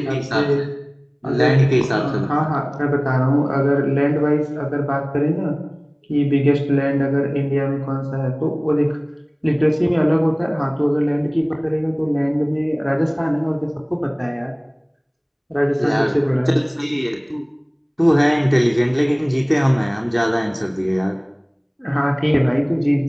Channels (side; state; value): both; identical; correlation 1.00